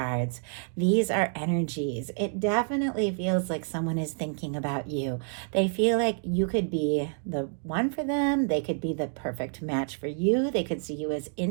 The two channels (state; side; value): silent; left; 59 dB below the other